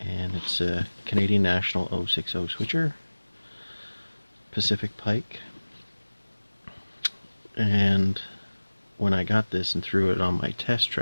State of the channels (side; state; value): both; inverted; correlation -1.00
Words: it's a Canadian National 060 switcher, Pacific Pike, and when I got this and threw it on my test